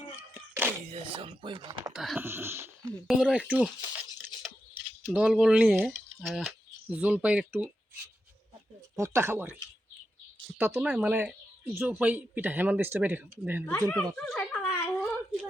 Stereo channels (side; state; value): both; normal; correlation 0.87